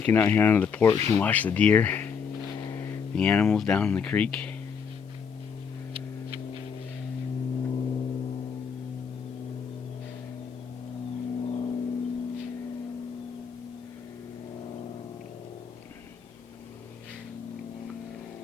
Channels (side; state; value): right; quieter; 6.5 dB